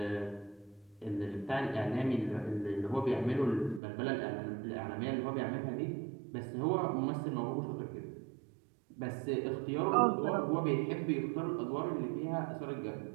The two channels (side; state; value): left; drops out; at 3.8 s